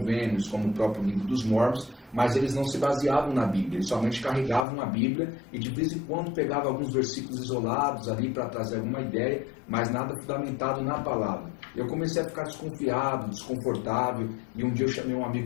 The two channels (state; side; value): drops out; right; at 4.7 s